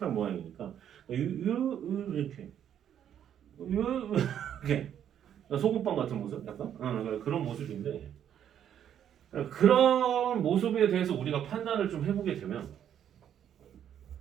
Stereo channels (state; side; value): quieter; left; 9.7 dB